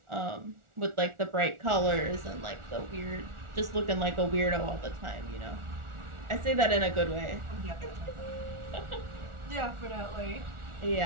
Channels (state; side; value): late; left; 1.4 ms